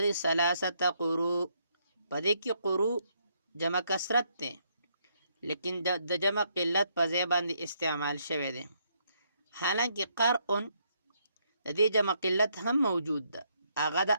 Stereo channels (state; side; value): inverted; both; correlation -0.74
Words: ثلاثه قروء، په دې کې قروء جمع کثرت دی لیکن د جمع قلت په ځای باندې استعمال شوی دی. حالانکه قرء د دې جمع قلت هم موجود ده، هغه د